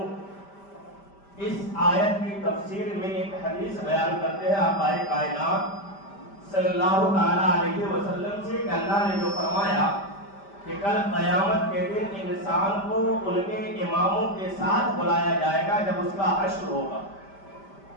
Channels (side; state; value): right; late; 5.1 ms